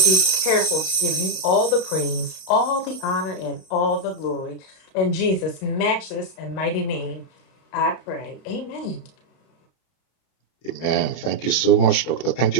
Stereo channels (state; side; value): late; right; 31 ms